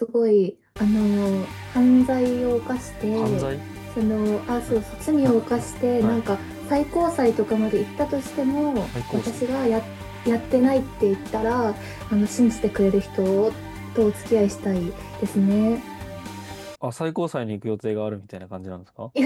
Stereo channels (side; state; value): both; identical; correlation 1.00